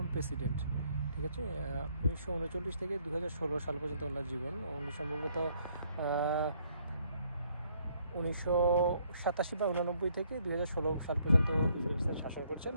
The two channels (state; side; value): inverted; both; correlation -0.68